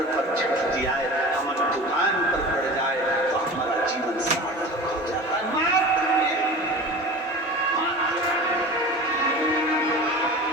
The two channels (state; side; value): normal; both; correlation 0.35